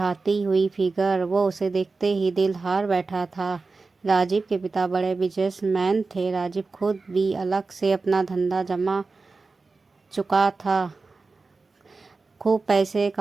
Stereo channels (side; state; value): left; quieter; 3.9 dB